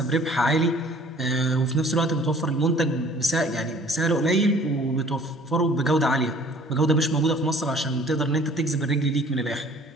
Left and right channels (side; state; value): both; normal; correlation 0.52